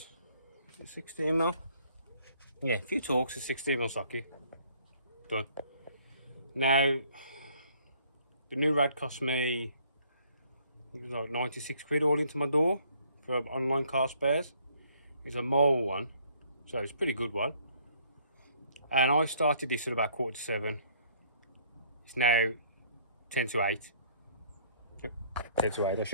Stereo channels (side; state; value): both; inverted; correlation -0.61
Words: 16mm. Yeah, a few Torx, a 16mm socket. Done. Now, the new rad cost me, it was like 96 quid all into my door for online car spares. It's a mole one, so it's a pretty good one. And I started this at about 6:45. It's now 10 to 8. Yep, 10 to 8. I